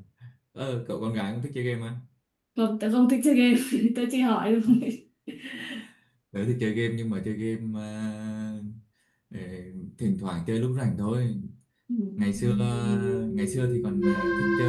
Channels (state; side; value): identical; both; correlation 1.00